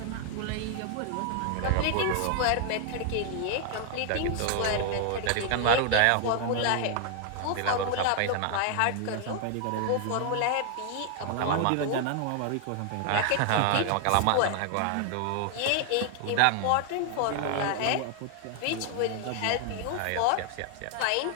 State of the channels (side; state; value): both; different; correlation 0.00